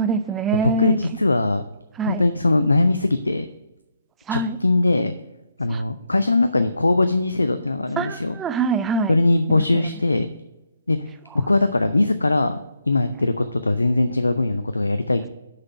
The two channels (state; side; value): inverted; both; correlation -0.79